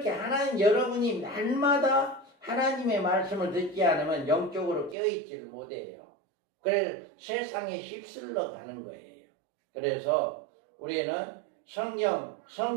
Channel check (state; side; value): drops out; left; at 5.0 s